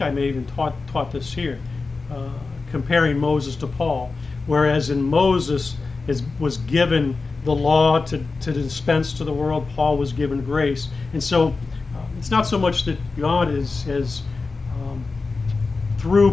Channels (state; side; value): quieter; right; 4.0 dB